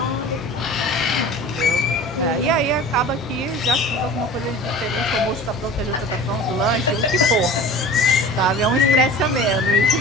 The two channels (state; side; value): normal; both; correlation 0.39